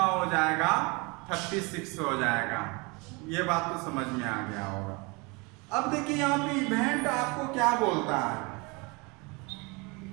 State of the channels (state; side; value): quieter; left; 28.1 dB